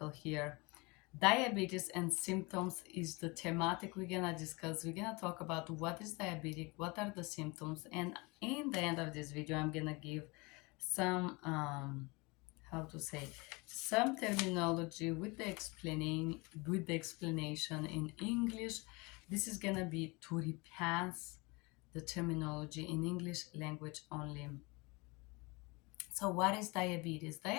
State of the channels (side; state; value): right; quieter; 26.4 dB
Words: here. Diabetes and symptoms is the thematic we're gonna discuss. We're gonna talk about what is diabetic, what are the symptoms, and in the end of this video I'm gonna give some how to say some terminology with the explanation in English. This is gonna be to repass the terminology in English language only. So what is diabetes?